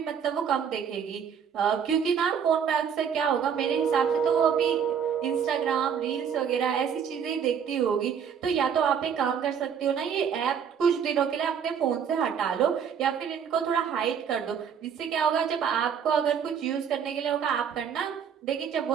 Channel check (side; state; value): left; quieter; 7.6 dB